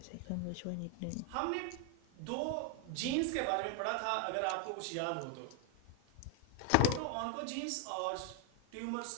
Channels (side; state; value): both; different; correlation 0.00